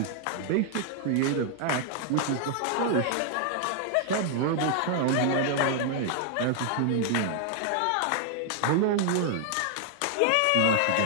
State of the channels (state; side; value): different; both; correlation 0.00